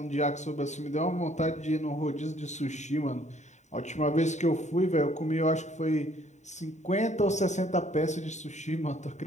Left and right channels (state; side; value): late; right; 0.34 ms